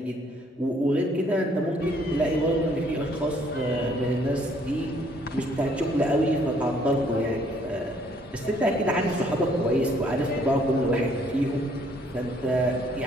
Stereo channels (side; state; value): both; normal; correlation 0.64